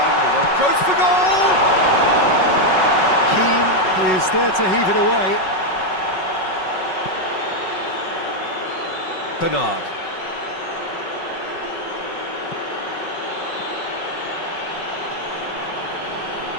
Goes for goal! Keane is there to heave it away. Bernard.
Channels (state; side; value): late; right; 5.4 ms